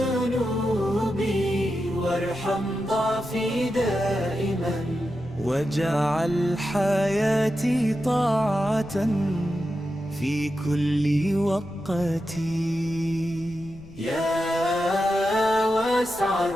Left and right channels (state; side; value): noise; left; rumble, 20 dB below the sound